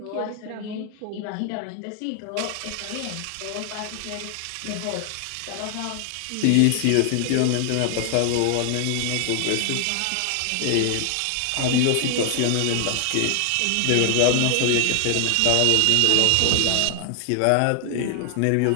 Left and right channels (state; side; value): different; both; correlation 0.00